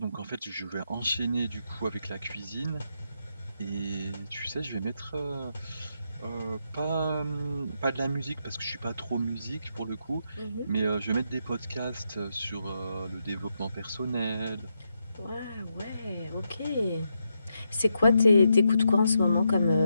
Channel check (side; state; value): both; inverted; correlation -0.83